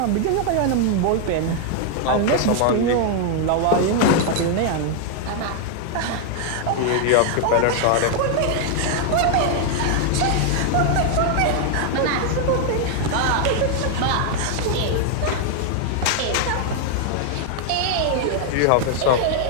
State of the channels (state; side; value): different; both; correlation 0.00